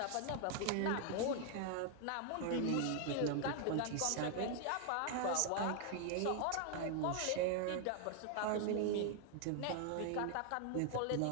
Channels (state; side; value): different; both; correlation 0.00